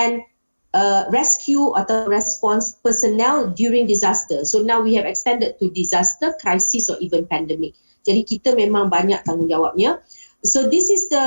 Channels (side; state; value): both; inverted; correlation -1.00